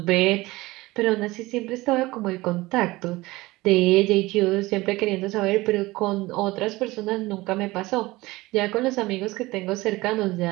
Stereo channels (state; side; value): quieter; left; 20.1 dB